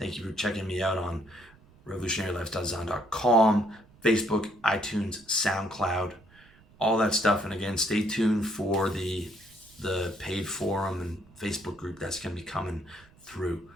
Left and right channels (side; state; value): right; noise; rumble, 27 dB below the sound